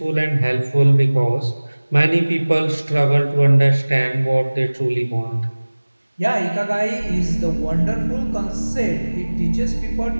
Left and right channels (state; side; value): inverted; both; correlation -1.00